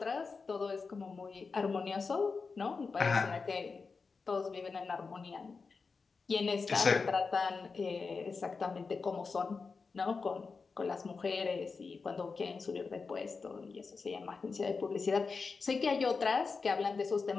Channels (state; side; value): quieter; right; 4.7 dB